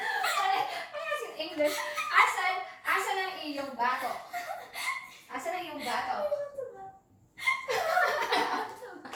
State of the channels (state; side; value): identical; both; correlation 1.00